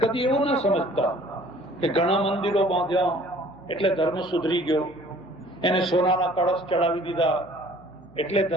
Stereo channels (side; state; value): left; noise; hum, 26 dB below the sound